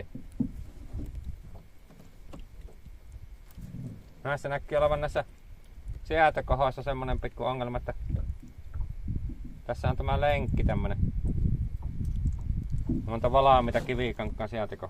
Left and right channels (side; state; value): both; identical; correlation 1.00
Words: Näissä näkyy olevan näissä säätökohoissa semmonen pikku ongelma, että tässä on tämä lenkki tämmönen. Monta valaamita kivikankaan